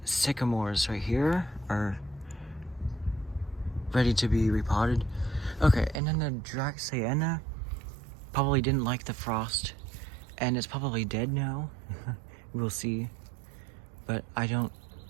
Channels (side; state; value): left; drops out; at 6.0 s